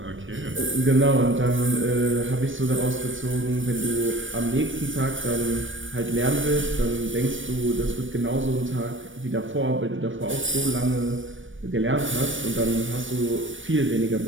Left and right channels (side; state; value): left; late; 0.56 ms